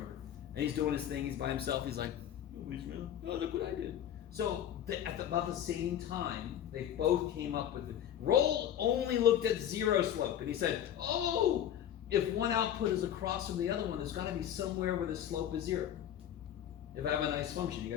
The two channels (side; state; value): right; quieter; 10.5 dB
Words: And he's doing his thing. He's by himself. He's like, nobody's real. Oh, look what I did. So about the same time, they both came up with it. Roll only looked at 0 slope, and he said, oh, if one output is across from the other one, there's got to be somewhere where the slope is 0. If I have a nice function, you